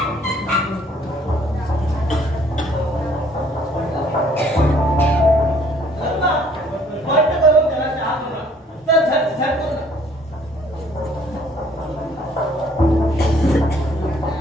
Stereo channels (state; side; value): normal; both; correlation 0.60